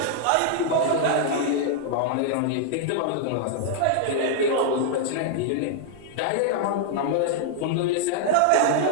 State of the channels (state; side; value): different; both; correlation -0.01